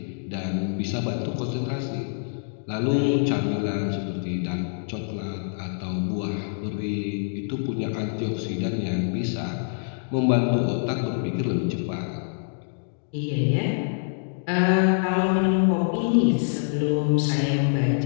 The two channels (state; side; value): silent; right; digital silence